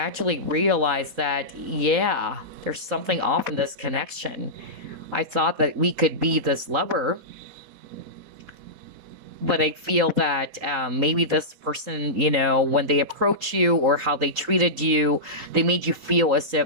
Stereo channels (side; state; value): left; late; 4.1 ms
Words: realized that, yeah, there's something off in this connection. I thought that we could be this lover, but I feel that maybe this person, when they approach you, or how they treated you, they made you feel as